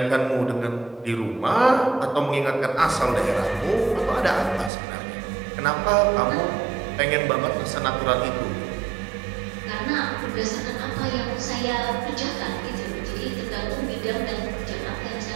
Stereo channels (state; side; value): drops out; left; at 4.7 s